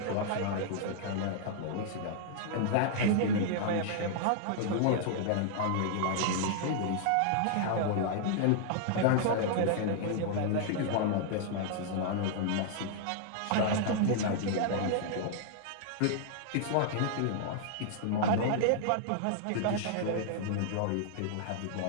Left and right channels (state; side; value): different; both; correlation -0.01